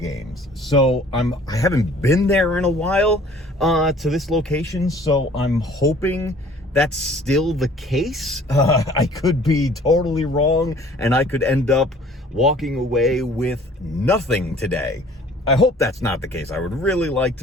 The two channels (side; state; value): both; normal; correlation 0.52